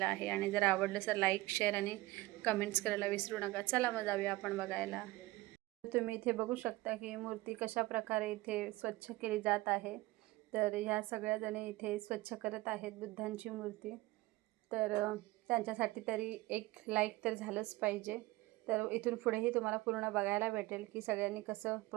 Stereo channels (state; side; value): quieter; left; 19.6 dB